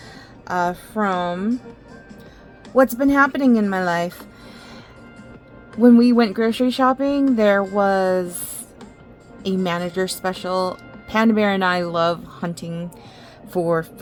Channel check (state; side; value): identical; both; correlation 1.00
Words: from what's been happening in my life. When we went grocery shopping, there was a manager special. Panda Bear and I love hunting for